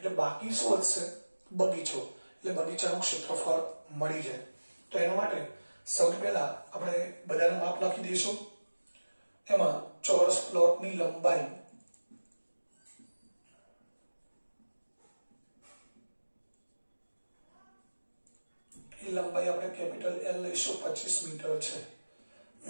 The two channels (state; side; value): inverted; both; correlation -1.00